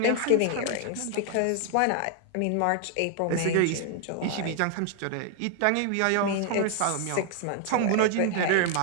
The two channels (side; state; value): both; different; correlation 0.00